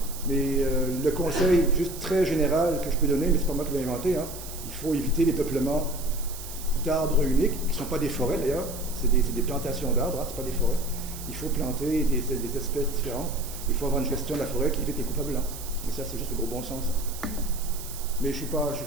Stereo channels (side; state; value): right; noise; hiss, 12 dB below the sound